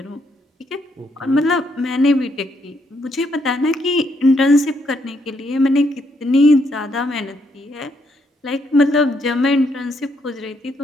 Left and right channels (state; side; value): normal; both; correlation 0.74